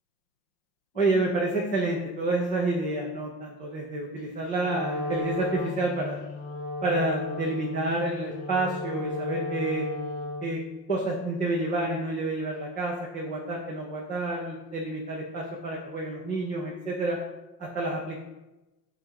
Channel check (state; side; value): late; right; 5.6 ms